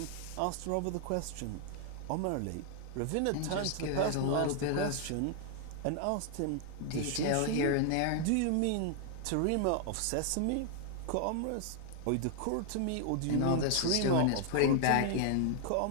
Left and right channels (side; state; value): both; different; correlation 0.00